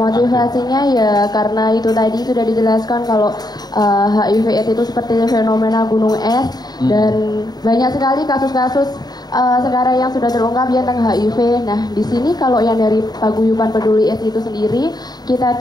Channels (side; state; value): right; late; 0.19 ms